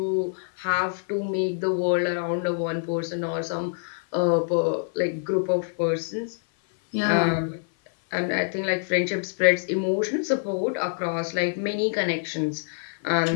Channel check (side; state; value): right; silent; 56 dB below the other